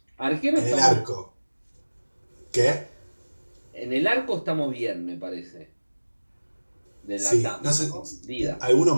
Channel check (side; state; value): both; inverted; correlation -1.00